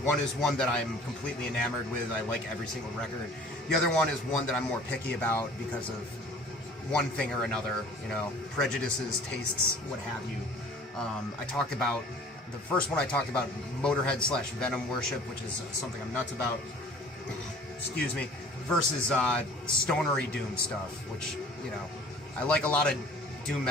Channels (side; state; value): both; normal; correlation 0.49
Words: one is one that I'm completely enamored with. I like every single record. The other one is one that I'm more picky about because of one thing or another, you know, prejudices, tastes, what have you. I talked about, the first one I talked about, Motorhead / Venom worship, which is something I'm nuts about, excuse me, versus stonery doom stuff, which, you know, I like a lot of doom